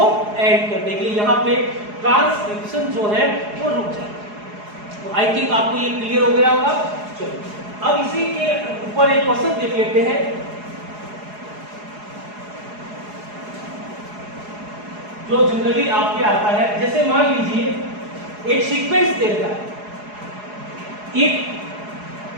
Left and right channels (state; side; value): late; left; 4.8 ms